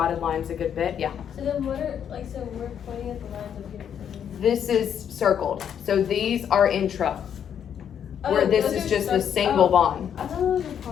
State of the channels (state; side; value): quieter; right; 8.6 dB